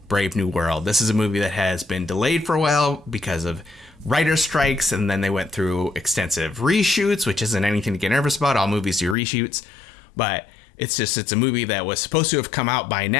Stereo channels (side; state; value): right; drops out; at 9.2 s